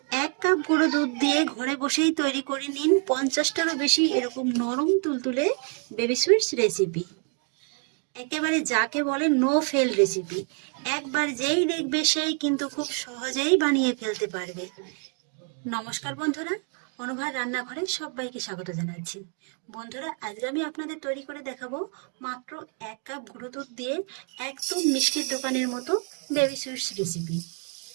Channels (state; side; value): quieter; left; 39.9 dB